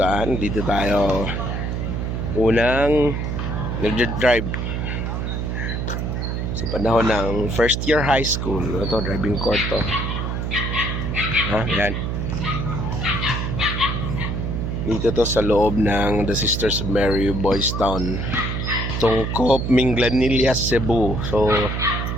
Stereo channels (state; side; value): noise; right; hum, 2 dB below the sound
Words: dito tayo unang nag-drive sa panahon ng first year high school. Ito, driving court to. Yan. Dito to sa loob ng The Sisters of Mary Boys Town, Tungkop, Minglanilla, Cebu. So